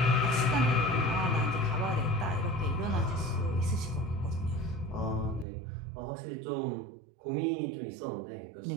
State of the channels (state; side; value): drops out; left; at 5.5 s